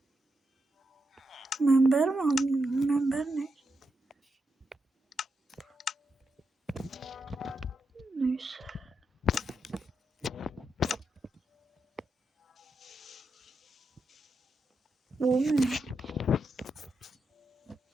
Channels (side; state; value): both; normal; correlation 0.85